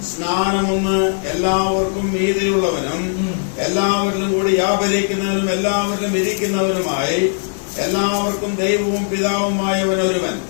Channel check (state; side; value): silent; right; 63 dB below the other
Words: സ്നാനമൊന്ന്, എല്ലാവർക്കും മീതിയുള്ളവനും എല്ലാവരിലും കൂടി വ്യാപരിക്കുന്നവനും എല്ലാവരിലും ഇരിക്കുന്നവനുമായി എല്ലാവർക്കും ദൈവവും പിതാവുമായവൻ ഒരുവൻ.